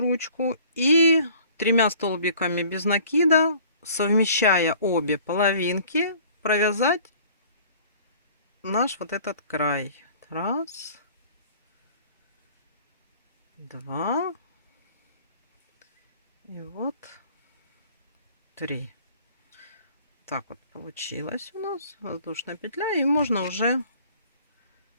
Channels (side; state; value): both; inverted; correlation -0.51